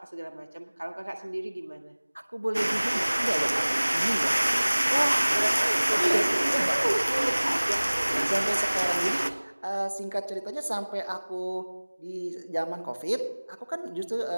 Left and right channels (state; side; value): inverted; both; correlation -1.00